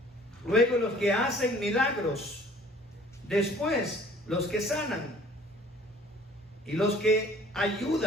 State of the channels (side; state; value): both; normal; correlation 0.53